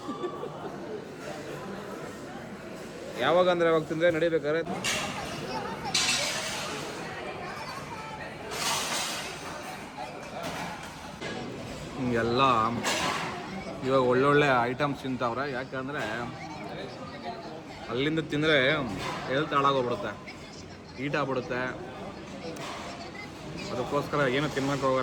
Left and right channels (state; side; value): identical; both; correlation 1.00